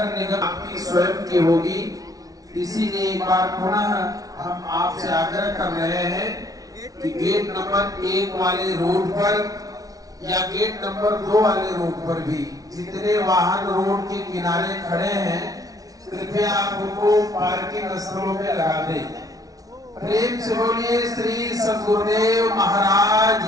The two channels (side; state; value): left; late; 0.18 ms